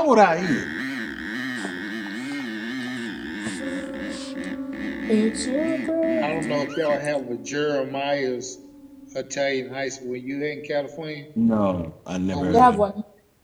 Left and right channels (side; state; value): both; identical; correlation 1.00